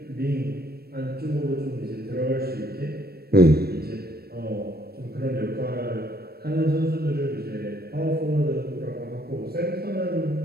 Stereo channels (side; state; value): left; late; 0.46 ms